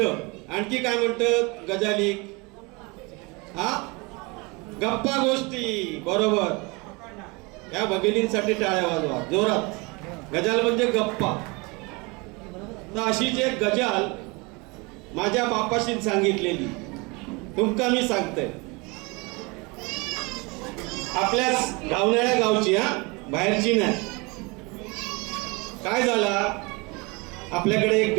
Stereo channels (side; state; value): left; quieter; 27.4 dB